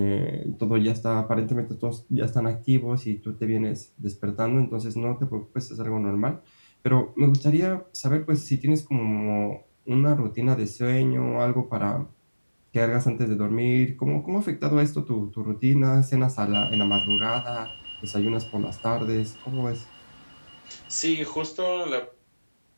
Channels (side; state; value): both; inverted; correlation -1.00